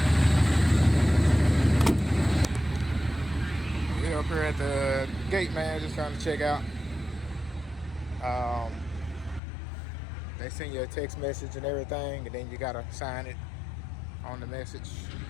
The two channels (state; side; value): drops out; right; at 9.4 s